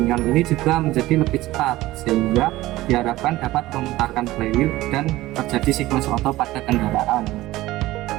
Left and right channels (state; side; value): quieter; left; 17.3 dB